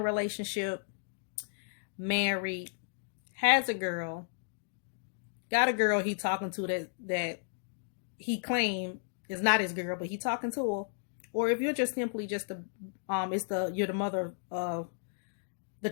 relationship, married, has a girl, got a girl he talking to that he claimed is not his girl, but he talking to her, or if you're just simply just you're the mother of the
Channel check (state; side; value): silent; right; digital silence